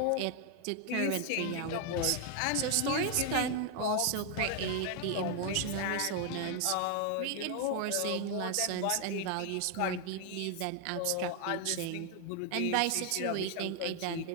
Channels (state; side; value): different; both; correlation 0.00